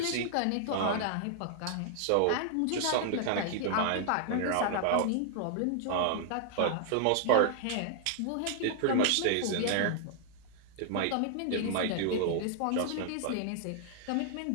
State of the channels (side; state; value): both; different; correlation -0.01